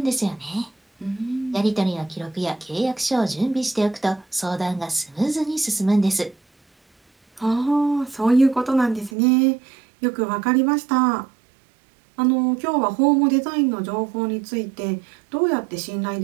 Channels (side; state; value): left; drops out; at 9.1 s